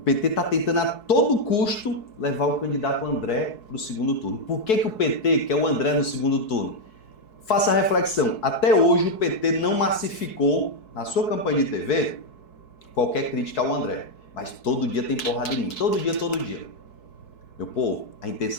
está tentando a todo custo levar o candidato André para o segundo turno. Por que o PT quer o André no segundo turno? Faça a reflexão. Até hoje o PT não massificou na sua campanha de TV qualquer crítica ao André. Mas todo dia tem porrada em mim. Todo dia, todo dia. Meu povo, a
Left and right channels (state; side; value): late; right; 4.6 ms